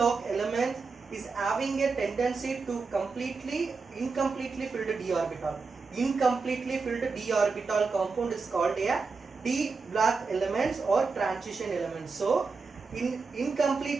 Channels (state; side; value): quieter; left; 4.5 dB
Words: element is having a tendency to incompletely filled d orbital. Incompletely filled d orbital compound is called a D block elements or transition elements. So,